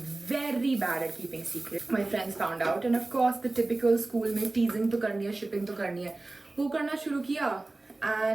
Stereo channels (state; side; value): quieter; left; 3.0 dB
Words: very bad at keeping secrets. My friends found out, and of course, the typical school में teasing तो करनी है, shipping तो करनी है, वो करना शुरू किया.